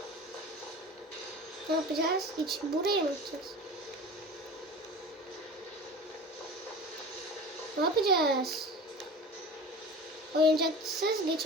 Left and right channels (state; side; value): normal; both; correlation 0.36